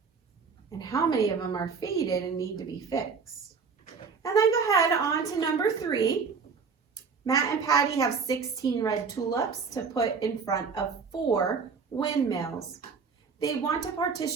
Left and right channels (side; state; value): left; quieter; 5.3 dB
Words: And how many of them are faded and need to be fixed? And then go ahead on to number 3. Matt and Patty have 16 red tulips to put in front of 4 windmills. They want to